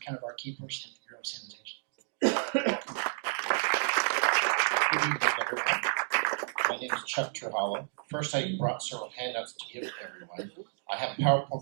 kind of our key person at the Bureau of Sanitation. Good evening, everyone. My name is Chuck Turhollow. First, I brought several handouts to give to everyone. I have a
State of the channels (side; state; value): left; silent; digital silence